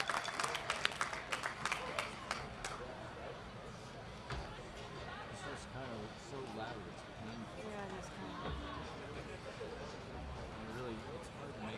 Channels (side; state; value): both; identical; correlation 1.00